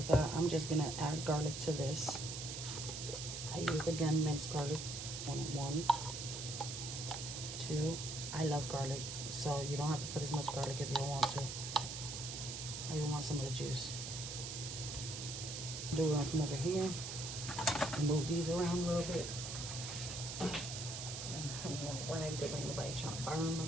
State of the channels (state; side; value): noise; right; hiss, 6 dB below the sound